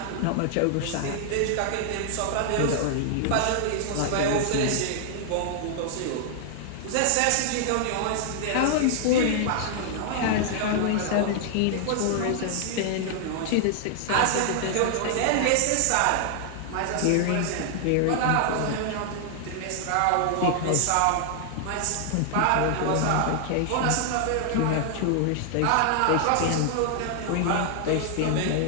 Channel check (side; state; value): both; different; correlation 0.00